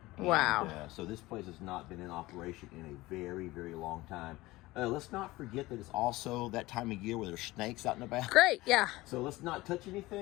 Wow. And, so this place has not been in operation in a very, very long time. Let's not forget that it's also that time of year where there's snakes out in the back. Great, yeah. So let's not touch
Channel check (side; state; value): right; quieter; 19.4 dB